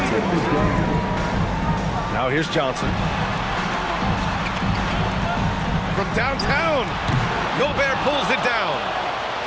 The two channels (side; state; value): both; identical; correlation 1.00